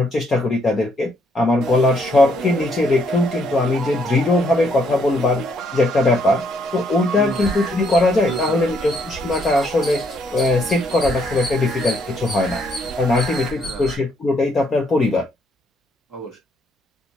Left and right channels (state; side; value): normal; both; correlation 0.71